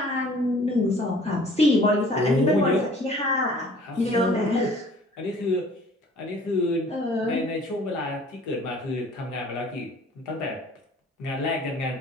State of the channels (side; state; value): both; normal; correlation 0.52